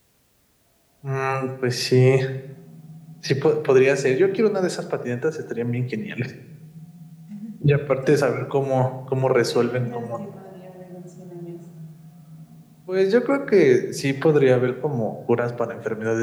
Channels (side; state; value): both; identical; correlation 1.00